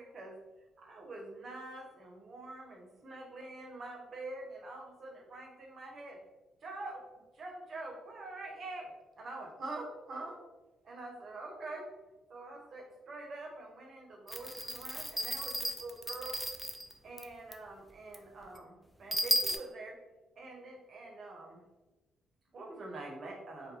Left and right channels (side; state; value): both; normal; correlation 0.88